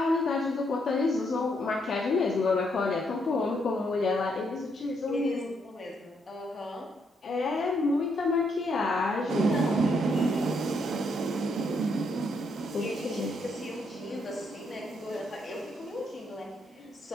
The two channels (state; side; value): normal; both; correlation 0.75